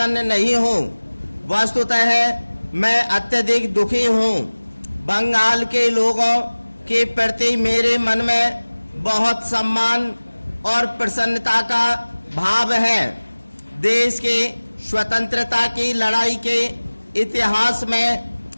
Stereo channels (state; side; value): inverted; both; correlation -1.00